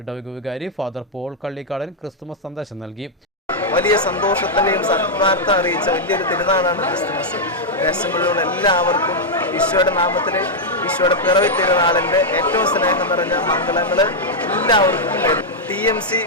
ഇടവക വികാരി ഫാദർ പോൾ കള്ളിക്കാടൻ ക്രിസ്തുമസ് സന്ദേശം നൽകി. വലിയ സന്തോഷത്തിൻ്റെയും സത്വാർത്ഥ അറിയിച്ച വലിയൊരു തിരുനാളാണ് ക്രിസ്തുമസ്. ദേശങ്ങളിലുള്ള എല്ലാവർക്കും ഈശോയുടെ നാമത്തിൽ ഈശോയുടെ പിറവി തിരുനാളിൻ്റെ ഏറ്റവും സ്നേഹം നിറഞ്ഞ മംഗളങ്ങൾ എല്ലാവർക്കും TMC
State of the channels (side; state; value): both; normal; correlation -0.03